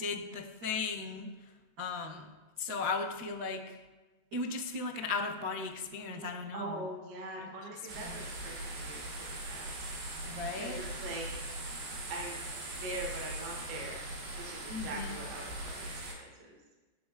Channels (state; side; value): late; left; 14 ms